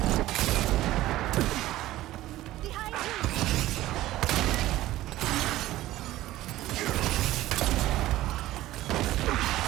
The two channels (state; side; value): quieter; left; 15.7 dB